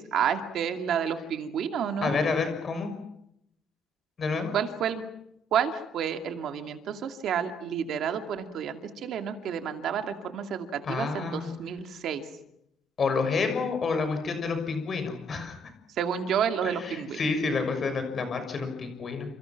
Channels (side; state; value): both; normal; correlation 0.65